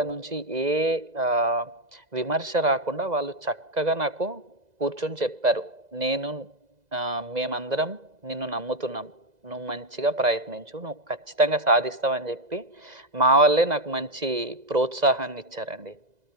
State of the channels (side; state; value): left; late; 2.0 ms